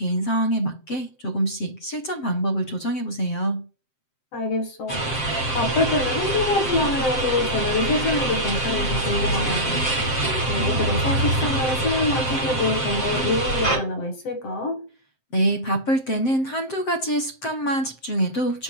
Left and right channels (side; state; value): right; late; 7.7 ms